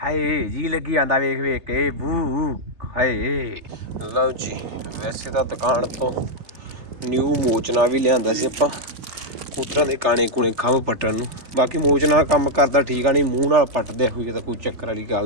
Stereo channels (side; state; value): left; late; 3.3 ms